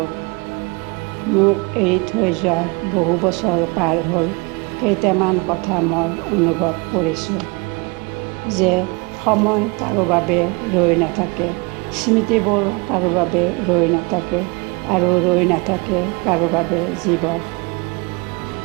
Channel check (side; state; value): left; quieter; 28.8 dB